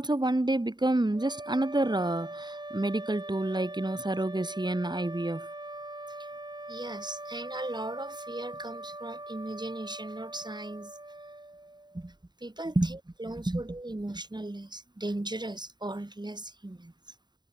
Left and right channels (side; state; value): left; late; 0.21 ms